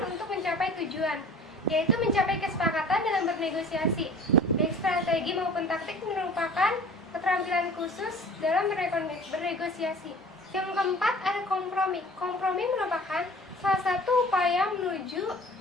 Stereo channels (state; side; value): normal; both; correlation 0.44